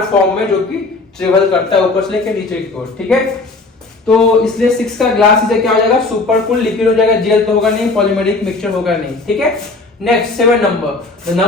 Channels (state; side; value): quieter; right; 3.5 dB